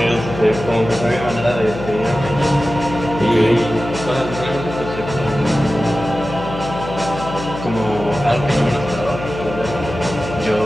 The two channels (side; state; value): left; noise; hum, 9 dB below the sound